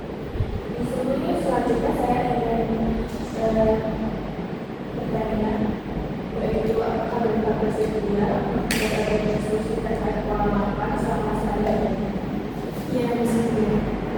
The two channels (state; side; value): identical; both; correlation 1.00